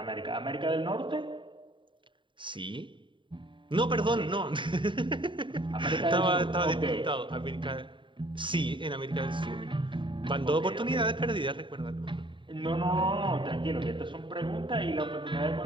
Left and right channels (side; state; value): left; late; 0.24 ms